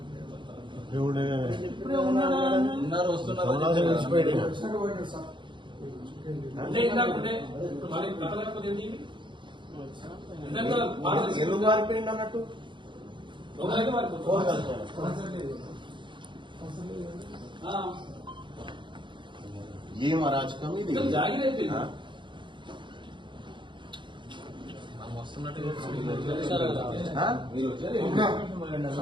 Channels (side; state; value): left; late; 0.23 ms